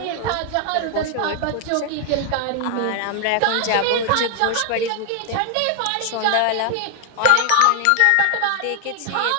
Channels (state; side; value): different; both; correlation 0.00